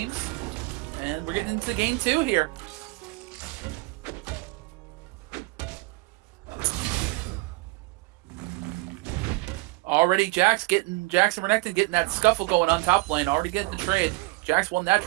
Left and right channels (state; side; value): quieter; left; 23.2 dB